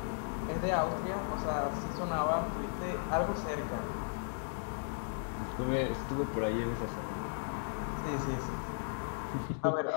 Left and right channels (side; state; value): right; silent; digital silence